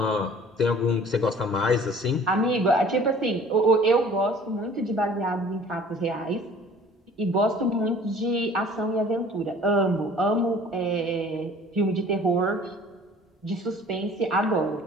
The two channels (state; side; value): normal; both; correlation 0.49